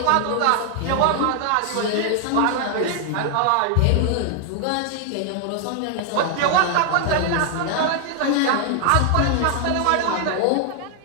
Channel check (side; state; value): both; different; correlation 0.00